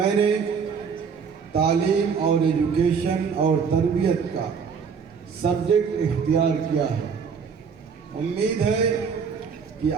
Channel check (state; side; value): quieter; left; 6.1 dB